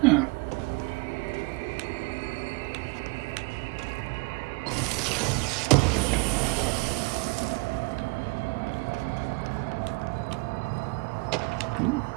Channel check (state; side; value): quieter; left; 27.3 dB